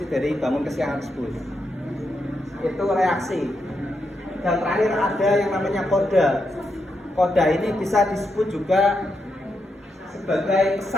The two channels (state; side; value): normal; both; correlation 0.83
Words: dari bangun kesiangan tersebut? Itu reaksi. Dan terakhir ada yang namanya koda. Koda ini bisa disebut juga sebagai